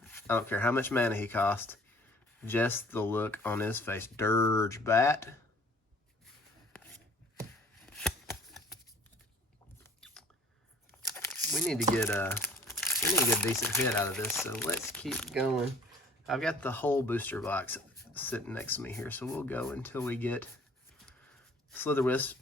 I don't care how much mana he costs. Just the look on his face. Dirge Bat. We need to get a decent hit out of this, so let's keep going. I've got the whole booster box sitting next to me here, so we'll go until we get Slitherwisp.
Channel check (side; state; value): both; normal; correlation 0.52